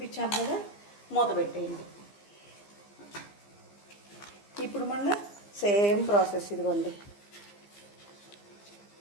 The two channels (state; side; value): late; right; 15 ms